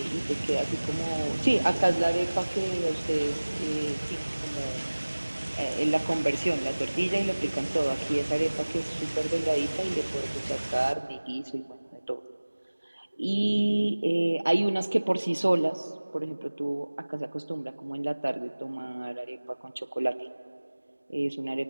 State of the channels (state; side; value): inverted; both; correlation -1.00